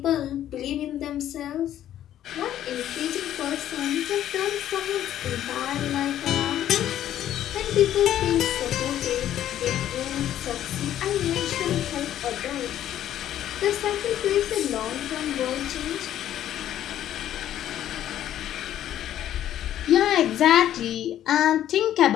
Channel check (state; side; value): quieter; right; 11.7 dB